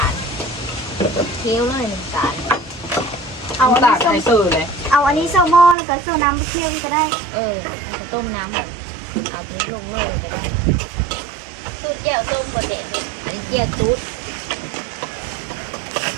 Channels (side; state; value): left; drops out; at 5.8 s